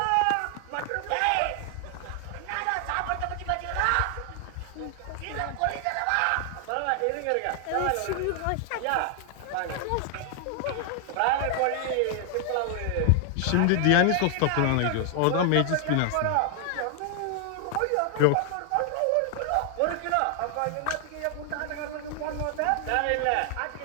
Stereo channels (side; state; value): both; different; correlation 0.00